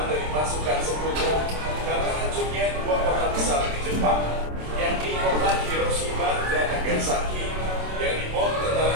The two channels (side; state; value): left; late; 27 ms